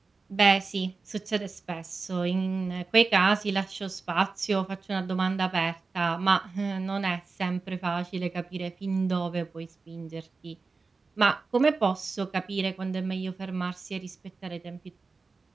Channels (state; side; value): quieter; left; 4.2 dB